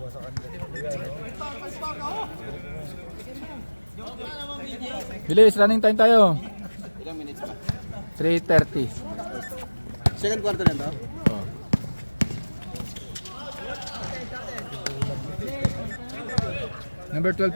Bilis, running time tayo. Ilang minutes pa? 3:30. Second quarter na to. Oh. Number 12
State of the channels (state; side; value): inverted; both; correlation -1.00